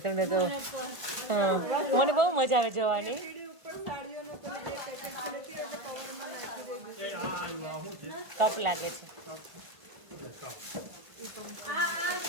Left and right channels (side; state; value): left; late; 1.8 ms